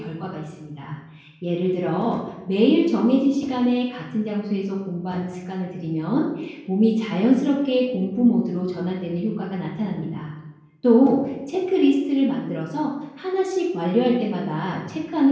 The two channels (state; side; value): identical; both; correlation 1.00